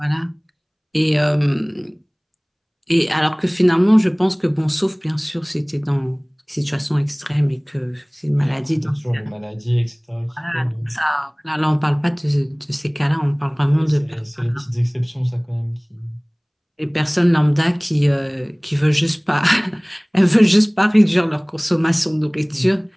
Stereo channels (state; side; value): identical; both; correlation 1.00